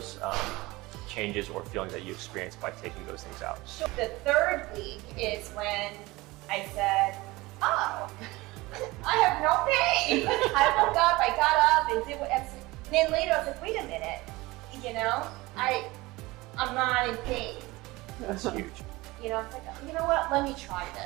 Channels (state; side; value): quieter; left; 21.0 dB